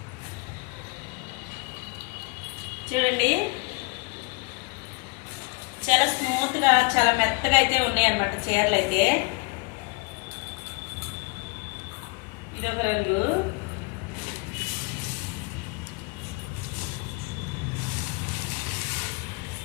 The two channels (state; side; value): quieter; right; 29.3 dB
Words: చూడండి చాలా స్మూత్ గా చాలా మెత్తగా అయితే ఉన్నాయి అనమాట చీరలు అయితే. ఇది ఒక రంగు,